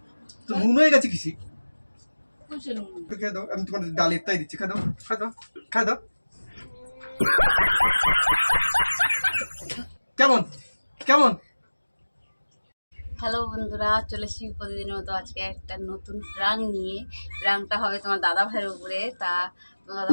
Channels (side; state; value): both; inverted; correlation -1.00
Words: তো নুন হয়ে গেছে কিসি খেয়ে দাও। আমি তোমার ডালের তাই দিচ্ছি, খাই দাও খাই দাও খাই দাও। কেমন কেমন? হ্যালো বন্ধুরা, চলে এসেছি প্রতিদিনের মতো আজকে একটা নতুন প্রাং নিয়ে। প্রাংটা হবে তোমার দাদা ভাইয়ের উপরে। তা তোমার দাদা